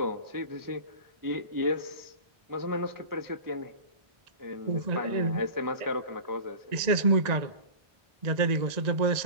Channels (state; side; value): late; left; 1.9 ms